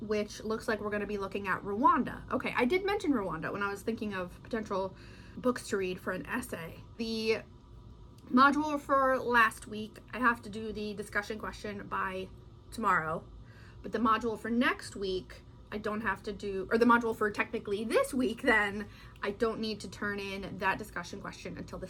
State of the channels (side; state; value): both; identical; correlation 1.00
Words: looks like we're going to be looking at Rwanda. Okay, I did mention Rwanda when I was thinking of potential books to read for an essay. The module for last week, I have to do the discussion question by tomorrow, but the module for next week, I don't have to do, or the module for technically this week, then I don't need to turn in that discussion question until the